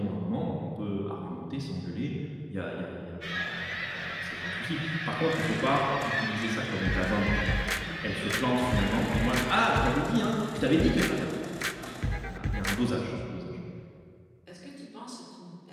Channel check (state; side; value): identical; both; correlation 1.00